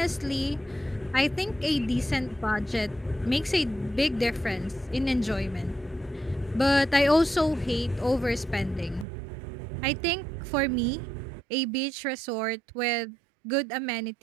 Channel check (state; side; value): drops out; left; at 9.1 s